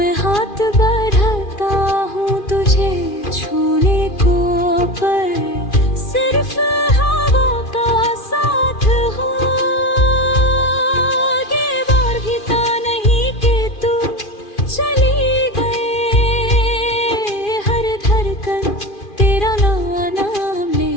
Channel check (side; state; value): right; late; 2.4 ms